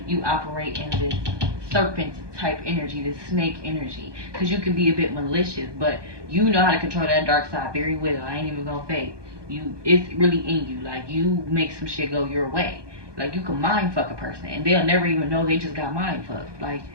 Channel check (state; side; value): late; left; 1.2 ms